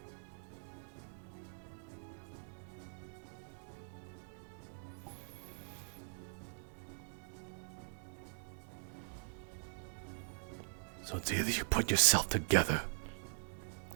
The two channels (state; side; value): silent; left; digital silence